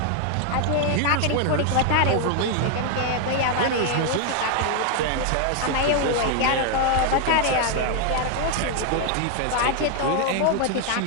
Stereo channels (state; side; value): different; both; correlation 0.01